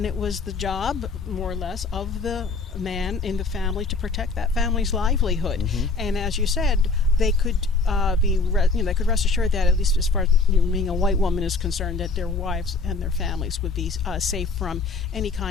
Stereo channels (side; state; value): right; quieter; 4.0 dB